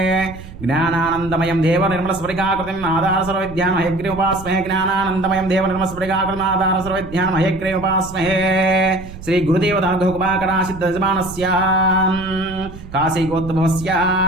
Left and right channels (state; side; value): noise; right; rumble, 14 dB below the sound